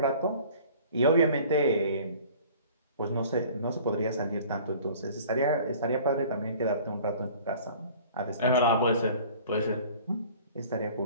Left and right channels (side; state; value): both; inverted; correlation -0.48